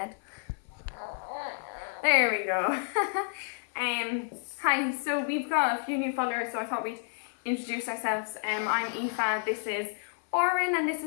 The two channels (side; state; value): right; silent; 58 dB below the other